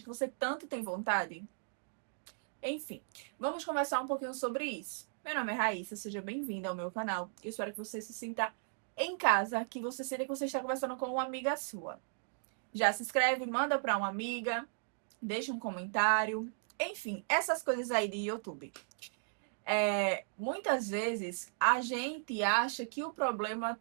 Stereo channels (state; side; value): silent; left; digital silence